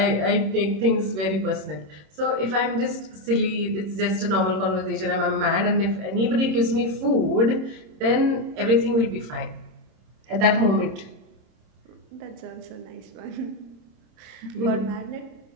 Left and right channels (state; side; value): late; left; 27 ms